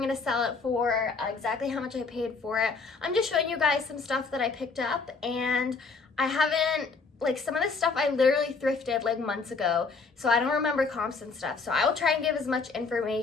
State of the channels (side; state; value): right; quieter; 4.5 dB